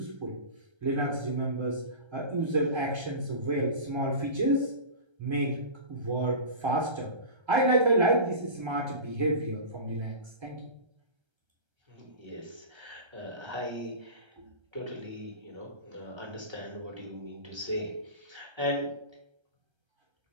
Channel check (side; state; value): left; late; 1.3 ms